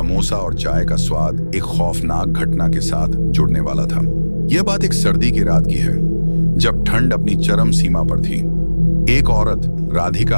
और चाय का स्वाद एक खौफनाक घटना के साथ जुड़ने वाला था। यह बात एक सर्दी की रात की है, जब ठंड अपनी चरम सीमा पर थी। एक औरत,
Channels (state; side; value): inverted; both; correlation -1.00